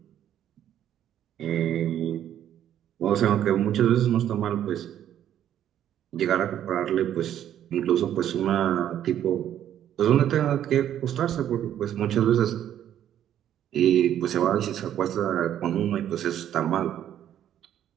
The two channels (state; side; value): quieter; left; 10.8 dB